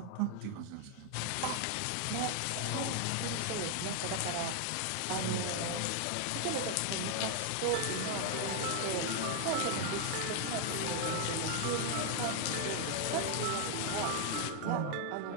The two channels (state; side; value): different; both; correlation 0.00